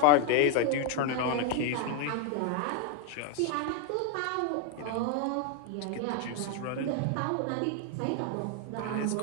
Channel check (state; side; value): different; both; correlation 0.01